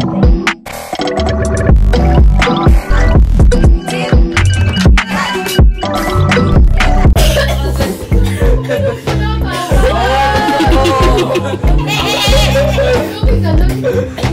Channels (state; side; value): identical; both; correlation 1.00